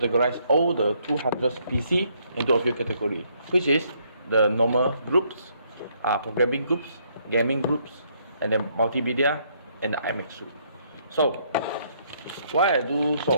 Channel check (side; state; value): both; inverted; correlation -0.69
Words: all the 200 PC into a few categories, which is the normal groups, programming groups, gaming groups, and then multimedia, and the IMAX suite. So, why I do